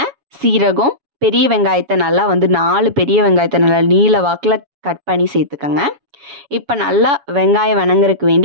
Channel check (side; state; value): left; late; 7.2 ms